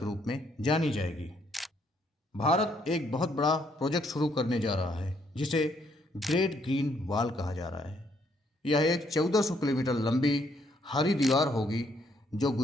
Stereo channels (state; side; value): normal; both; correlation 0.70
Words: रूप में जानी जाएगी। भारत एक बहुत बड़ा प्रोजेक्ट शुरू करने जा रहा है जिसे ग्रेट ग्रीन वॉल कहा जा रहा है। यह एक 1400 किलोमीटर लंबी हरी दीवार होगी जो